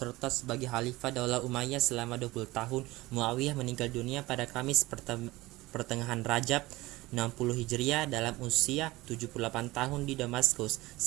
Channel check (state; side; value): quieter; left; 19.7 dB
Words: sebagai khalifah Daulah Umayyah selama 20 tahun, Muawiyah meninggal dunia pada Kamis pertengahan Rajab 60 Hijriah dalam usia 78 tahun di Damaskus.